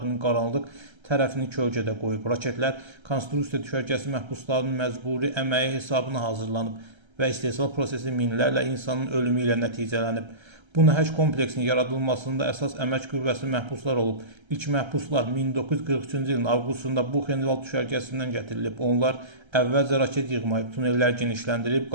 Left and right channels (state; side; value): late; left; 1.3 ms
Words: qaranlıq tərəfini kölgədə qoyub. Raketlər konstruksiya düşərgəsi məhbuslarının məcburi əməyi hesabına hazırlanıb və istehsal prosesi minlərlə insanın ölümü ilə nəticələnib. Bu nəhəng kompleksin yaradılmasında əsas əmək qüvvəsi məhbuslar olub. İlk məhbuslar 1943-cü ilin avqustunda Buchenwald düşərgəsindən gətirilib. Onlar əvvəlcə raket yığmayıb, tunellər genişləndirib,